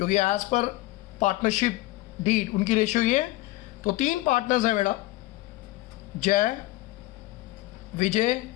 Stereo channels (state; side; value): quieter; right; 18.2 dB